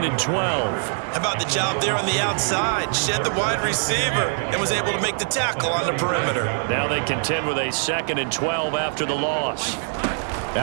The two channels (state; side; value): silent; left; 62 dB below the other